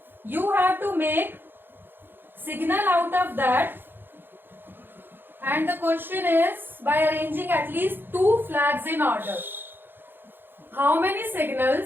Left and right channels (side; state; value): left; late; 0.099 ms